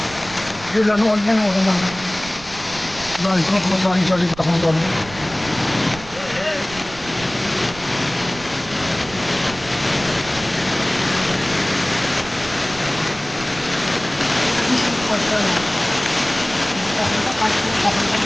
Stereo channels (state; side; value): noise; right; rumble, 17 dB below the sound